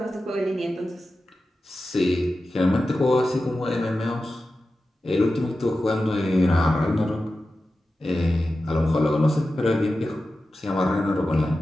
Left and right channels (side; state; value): both; normal; correlation 0.93